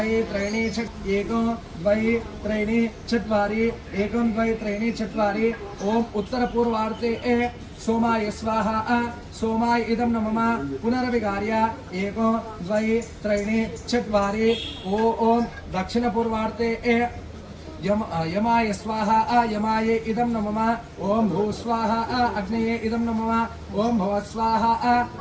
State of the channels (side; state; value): both; identical; correlation 1.00